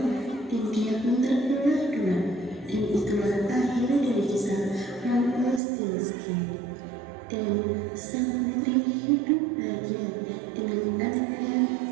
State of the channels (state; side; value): drops out; left; at 5.6 s